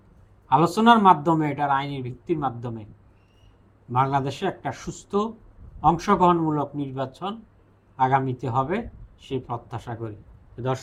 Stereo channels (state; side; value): identical; both; correlation 1.00